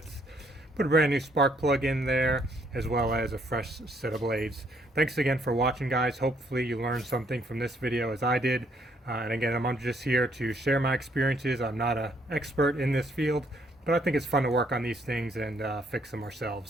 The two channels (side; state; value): both; normal; correlation 0.69